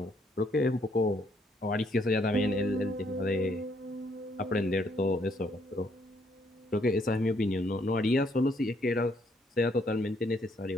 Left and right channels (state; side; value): normal; both; correlation 0.70